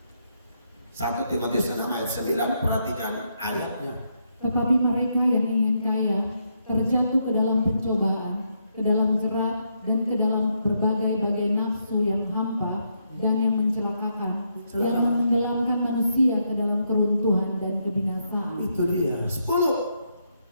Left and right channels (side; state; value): both; inverted; correlation -0.78